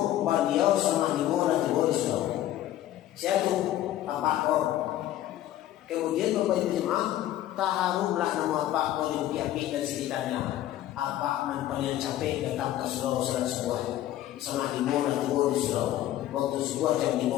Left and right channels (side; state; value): right; quieter; 13.3 dB